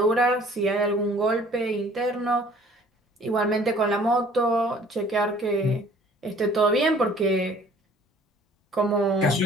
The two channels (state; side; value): normal; both; correlation 0.54